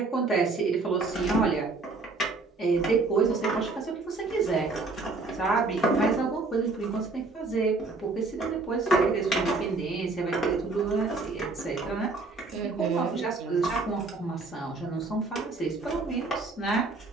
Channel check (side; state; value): left; quieter; 3.6 dB